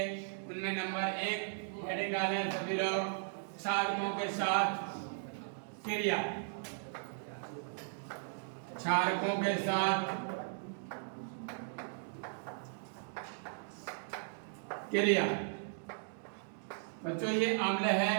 उनमें नंबर 1 हेडिंग डालें सभी लोग, क्षारकों के साथ क्रिया। क्षारकों के साथ क्रिया। बच्चों ये अम्ल है,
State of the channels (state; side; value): silent; left; digital silence